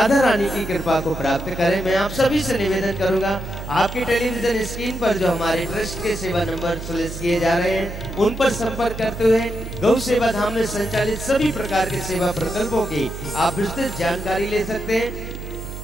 रानी की कृपा को प्राप्त करें। मैं आप सभी से निवेदन करूंगा, आपके टेलीविजन स्क्रीन पर जो हमारे ट्रस्ट के सेवा नंबर सुलिस किए जा रहे हैं, उन पर संपर्क करते हुए गौ सेवा धाम में संचालित सभी प्रकार के सेवा प्रकल्पों की आप विस्तृत जानकारी ले सकते हैं।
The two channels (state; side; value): noise; right; hum, 9 dB below the sound